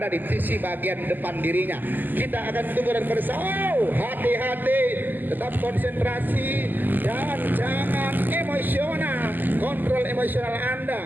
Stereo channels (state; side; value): late; left; 0.088 ms